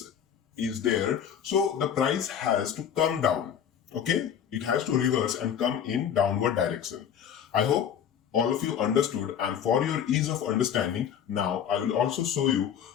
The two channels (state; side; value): quieter; right; 8.7 dB